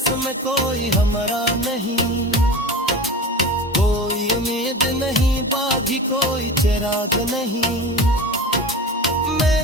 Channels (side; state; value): both; normal; correlation 0.32